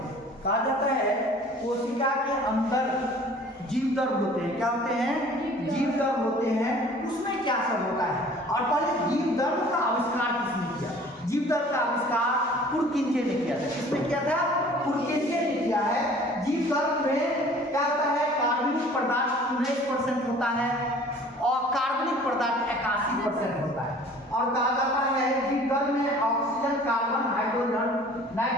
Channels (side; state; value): both; normal; correlation 0.49